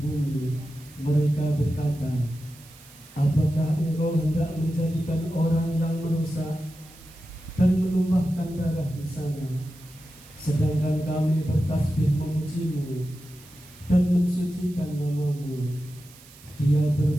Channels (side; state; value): right; noise; hiss, 22 dB below the sound